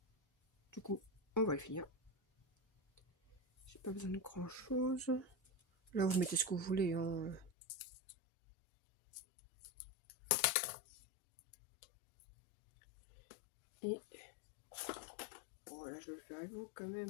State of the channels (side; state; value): right; drops out; at 7.5 s